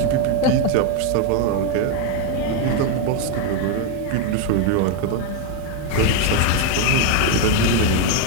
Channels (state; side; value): different; both; correlation 0.01